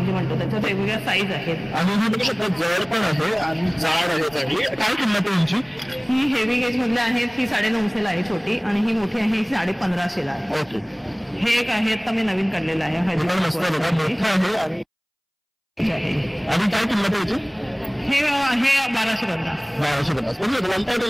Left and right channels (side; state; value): both; identical; correlation 1.00